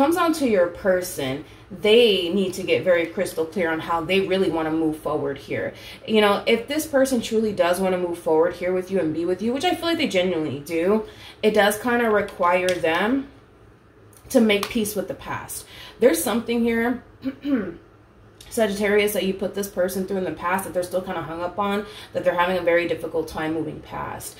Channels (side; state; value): both; identical; correlation 1.00